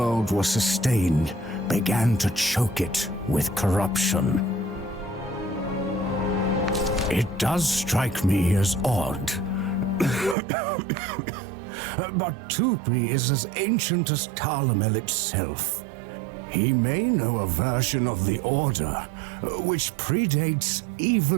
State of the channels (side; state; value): left; drops out; at 10.4 s